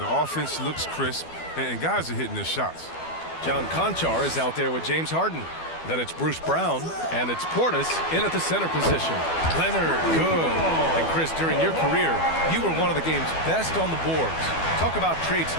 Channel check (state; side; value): late; right; 12 ms